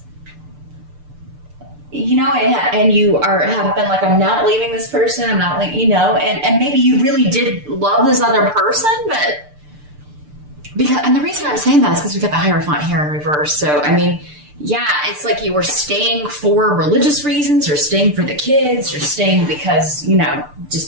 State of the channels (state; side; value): late; left; 6.8 ms